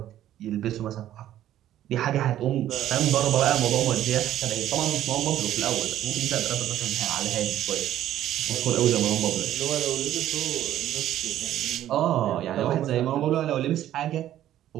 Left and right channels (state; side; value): quieter; left; 12.4 dB